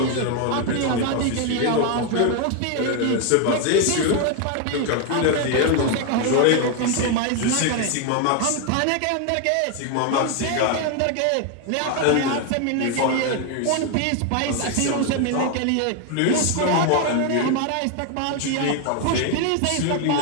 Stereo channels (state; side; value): different; both; correlation 0.01